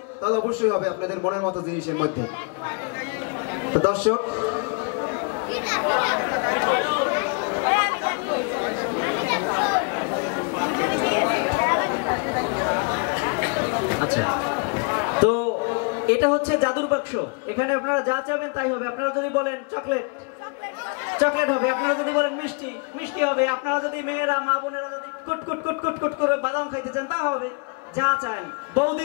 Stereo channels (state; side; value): quieter; right; 34.1 dB